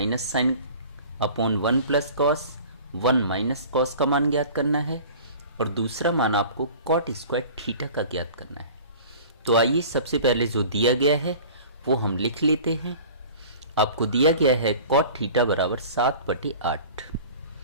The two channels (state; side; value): inverted; both; correlation -0.43